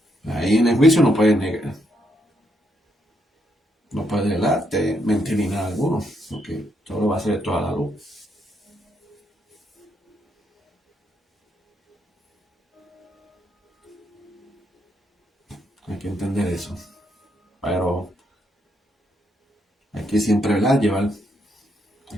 Ahí en el juicio no puede negar, no puede delarte, mentir ni nada alguno, porque todo va a ser toda la luz. Hay que entender eso. Pero hay que siempre, ¿verdad?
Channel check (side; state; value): both; normal; correlation 0.77